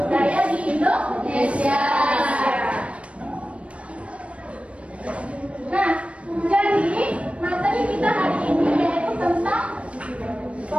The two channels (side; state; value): left; late; 0.062 ms